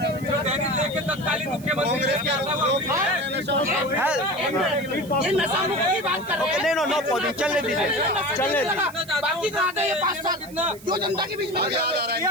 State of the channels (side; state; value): right; noise; hiss, 20 dB below the sound